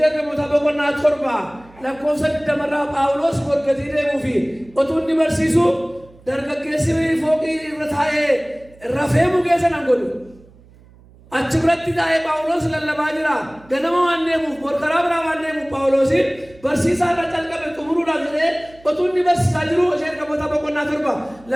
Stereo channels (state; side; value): noise; right; hum, 25 dB below the sound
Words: ergamootaa boqonnaa 7 lakkoofsa 20 Phaawulos morgatii deemuu fi otuu inni barsiisu dargaggeessi fooqii irra taa'ee rafee mugee sanaan godhu. Achi biratti taa'ee Phaawulos lallabaa jira. Ganama waan deemuuf morkaraa biraa waan deemuuf Phaawulosiin barsiisaa irra calqabe xumuruudhaaf jedhee otuu inni barsiisaa jiru hojii ergamootaa boqonnaa 7